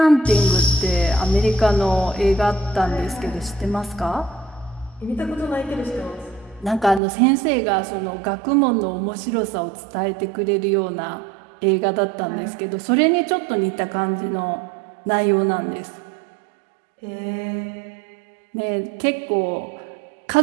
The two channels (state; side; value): drops out; left; at 7.0 s